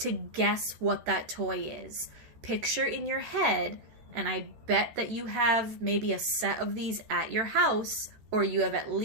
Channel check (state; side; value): late; left; 13 ms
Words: guess what that toy is. Picture in your head, and I bet that you have maybe a set of these at your house, or you have at